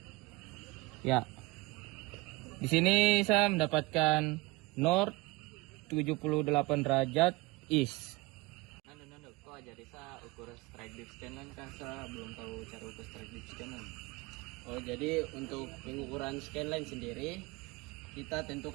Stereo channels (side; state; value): left; quieter; 22.5 dB